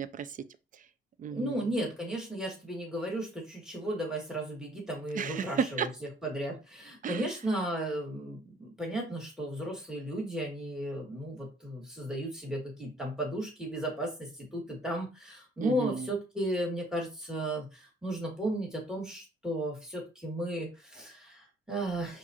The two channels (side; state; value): both; normal; correlation 0.59